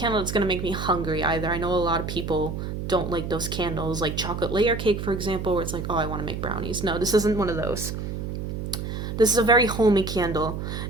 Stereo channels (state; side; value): noise; right; hum, 5 dB below the sound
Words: that's going to make me hungry either. I know a lot of people don't like those candles, like chocolate layer cake, for example, where it's like, oh, I want to make brownies. No, this isn't one of those. This is a very homey candle,